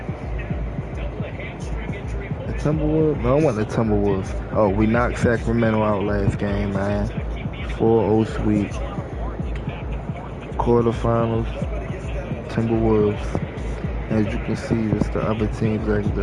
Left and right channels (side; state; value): both; identical; correlation 1.00